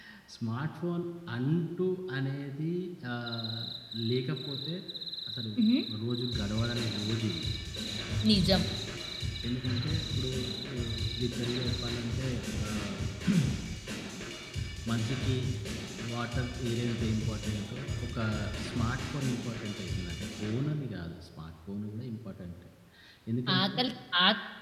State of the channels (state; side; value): identical; both; correlation 1.00